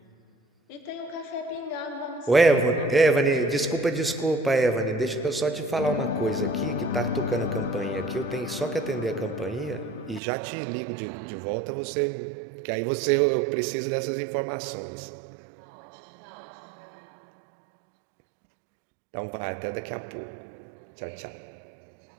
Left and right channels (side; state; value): left; drops out; at 10.2 s